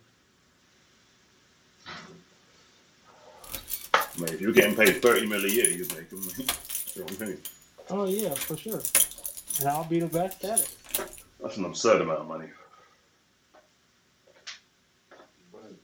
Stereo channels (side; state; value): both; identical; correlation 1.00